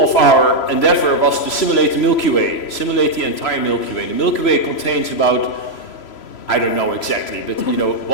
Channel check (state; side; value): late; right; 3.0 ms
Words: of our endeavor was to simulate the Milky Way, simulate the entire Milky Way. The Milky Way contains about, I don't know exactly, but you know,